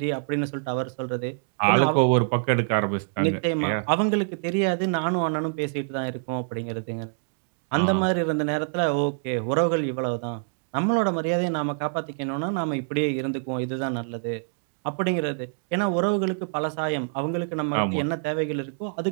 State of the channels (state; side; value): silent; left; digital silence